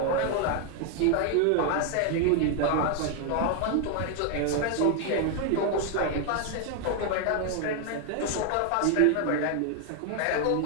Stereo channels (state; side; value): different; both; correlation 0.00